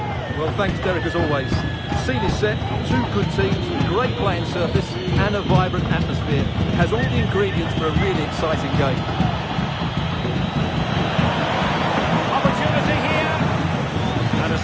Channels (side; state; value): both; identical; correlation 1.00